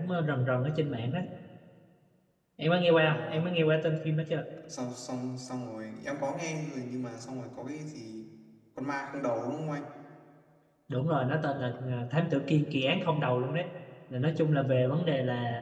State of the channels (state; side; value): identical; both; correlation 1.00